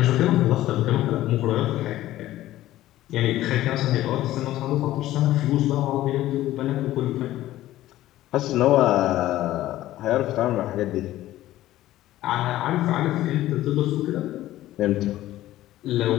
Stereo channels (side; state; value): right; quieter; 14.8 dB